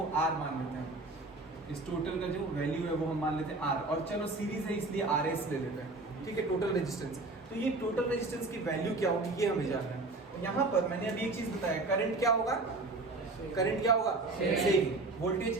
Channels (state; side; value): quieter; left; 3.2 dB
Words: R मान लेते हैं. इस टोटल का जो वैल्यू है वो हम मान लेते हैं R, और चलो सीरीज है इसलिए RS ले लेते हैं. ठीक है, टोटल रेजिस्टेंस. तो ये टोटल रेजिस्टेंस की वैल्यू क्या होगी ये हमें जानना है. यहाँ पर मैंने अभी एक चीज बताया, करंट क्या होगा, करंट क्या होगा सेम, वोल्टेज